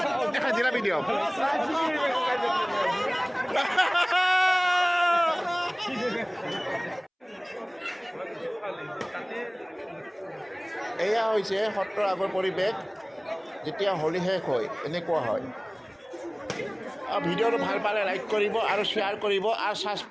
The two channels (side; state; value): both; identical; correlation 1.00